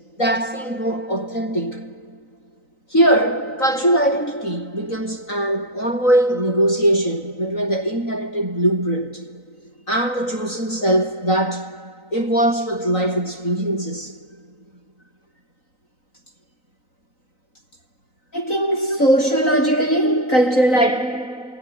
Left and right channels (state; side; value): late; right; 3.9 ms